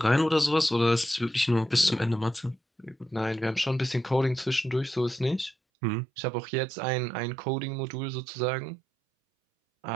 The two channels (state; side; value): drops out; left; at 5.6 s